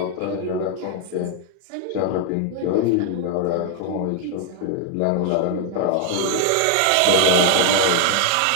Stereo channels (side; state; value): both; different; correlation 0.00